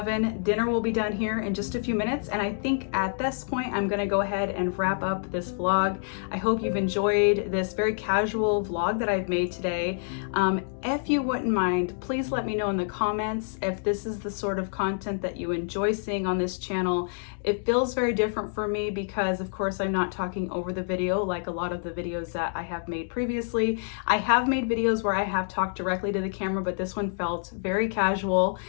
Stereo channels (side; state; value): right; silent; digital silence